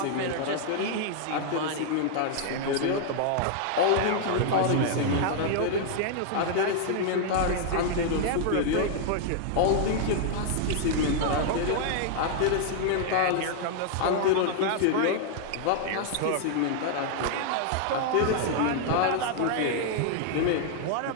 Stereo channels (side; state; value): both; different; correlation -0.01